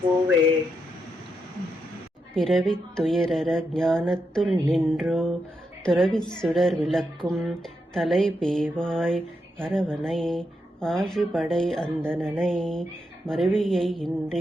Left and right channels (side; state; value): both; normal; correlation 0.83